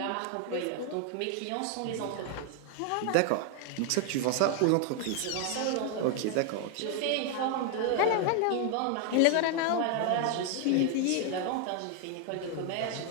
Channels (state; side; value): different; both; correlation 0.01